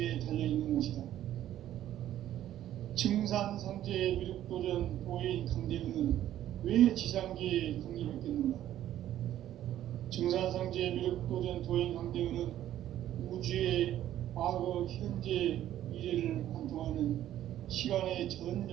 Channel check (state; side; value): quieter; left; 12.3 dB